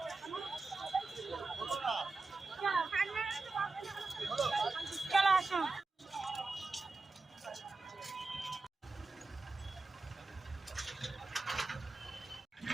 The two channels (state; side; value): quieter; left; 3.6 dB